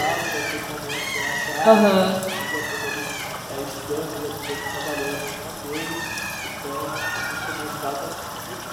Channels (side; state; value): both; identical; correlation 1.00